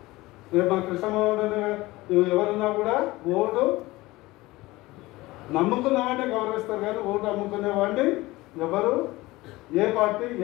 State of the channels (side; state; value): right; quieter; 19.8 dB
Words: రేపు మా కృష్ణమోహన్ ఎవరున్నా కూడా ఓటు నమ్ముకున్న వాడిని గౌరవిస్తారు, కానీ ఓటు అమ్ముకునే వాడిని ఎవరు ఏ పార్టీ